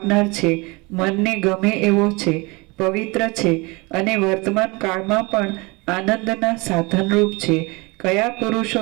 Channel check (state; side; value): quieter; left; 26.1 dB